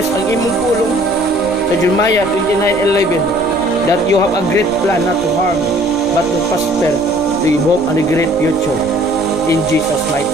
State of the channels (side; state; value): left; noise; rumble, 17 dB below the sound